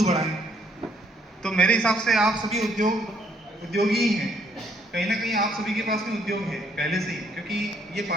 बढ़ाएं, तो मेरे हिसाब से आप सभी उद्योगी ही हैं। कहीं ना कहीं आप सभी के पास में उद्योग है पहले से ही, क्योंकि ये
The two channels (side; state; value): both; normal; correlation 0.68